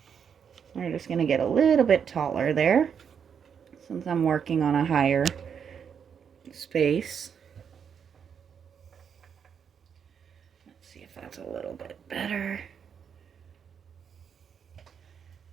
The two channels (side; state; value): left; quieter; 7.3 dB